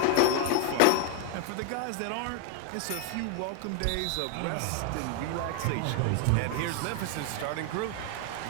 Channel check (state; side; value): different; both; correlation 0.01